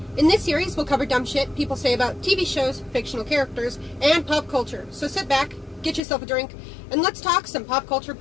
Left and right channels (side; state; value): right; drops out; at 6.0 s